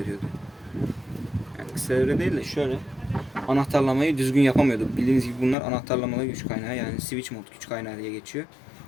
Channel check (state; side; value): drops out; right; at 5.6 s